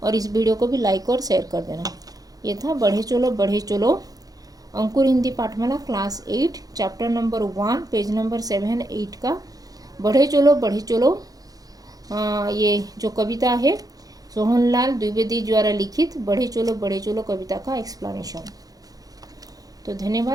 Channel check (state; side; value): late; left; 0.18 ms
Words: और इस वीडियो को भी लाइक और शेयर कर देना। ये था बढ़े चलो Ankur Hindi Pathmala class 8 chapter number 1 page number 7, 8 का बढ़े चलो ये जो कविता है सोहनलाल द्विवेदी द्वारा लिखित बढ़े चलो कविता का एक्सप्लेनेशन। तो